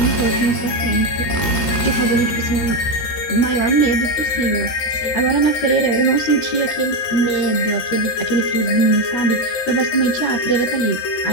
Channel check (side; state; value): right; late; 13 ms